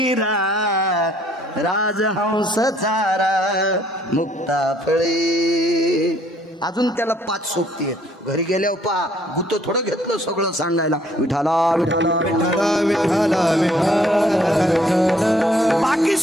राजहंस चारा मुक्ता फळे. अजून त्याला 5 सोबती आहेत. घरी गेल्यावर पा गुत थोडं घेतलं सगळं सांगायला विठाला विठाला विठाला विठाला विठाला. बाकी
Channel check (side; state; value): both; normal; correlation 0.63